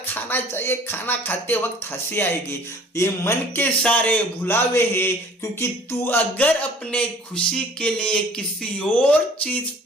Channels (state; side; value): normal; both; correlation 0.51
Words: खाना चाहिए, खाना खाते वक्त हंसी आएगी। ये मन के सारे भुलावे हैं, क्योंकि तू अगर अपने खुशी के लिए किसी और चीज